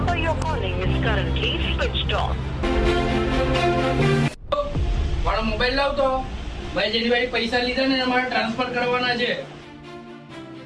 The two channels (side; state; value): both; identical; correlation 1.00